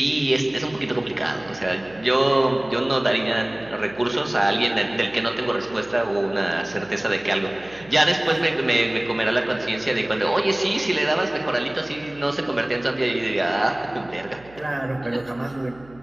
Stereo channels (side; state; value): right; noise; hum, 24 dB below the sound